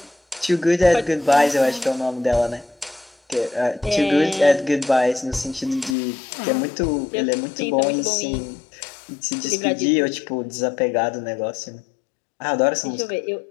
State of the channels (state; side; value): drops out; right; at 6.0 s